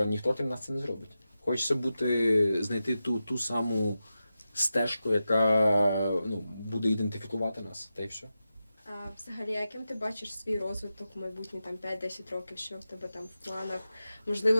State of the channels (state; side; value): inverted; both; correlation -0.92